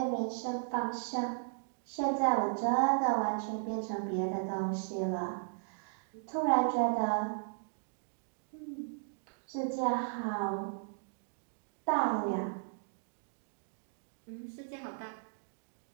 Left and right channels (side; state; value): left; silent; digital silence